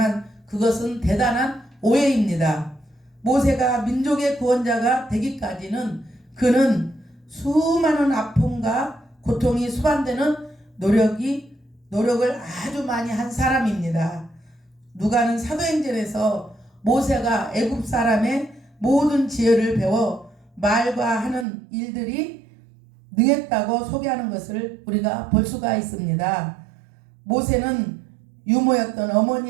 그것은 대단한 오해입니다. 모세가 민족의 구원자가 되기까지는 그는 수많은 아픔과 고통이 수반되는 노력을 아주 많이 한 사람입니다. 누가는 사도행전에서 모세가 애굽 사람의 모든 지혜를 배워 말과 하는 일들이 능했다고 소개하는 것을 우리가 볼 수가 있습니다. 모세는 유모였던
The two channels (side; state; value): left; drops out; at 21.5 s